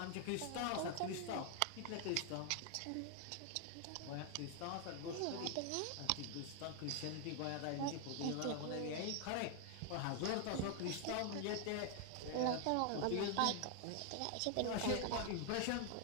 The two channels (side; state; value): both; different; correlation 0.00